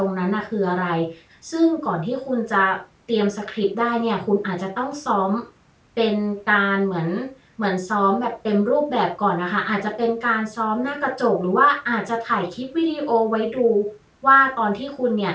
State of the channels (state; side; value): identical; both; correlation 1.00